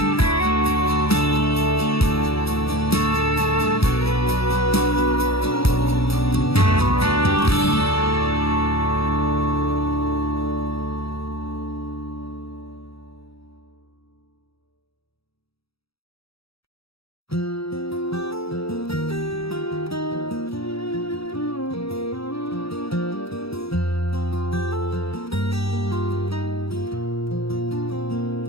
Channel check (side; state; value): right; late; 0.77 ms